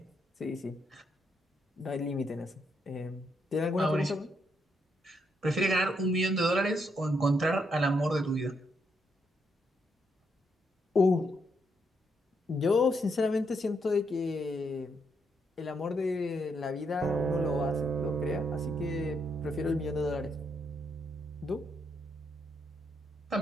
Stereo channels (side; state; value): both; normal; correlation 0.77